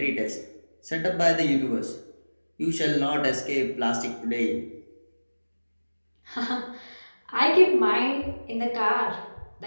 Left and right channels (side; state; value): both; inverted; correlation -1.00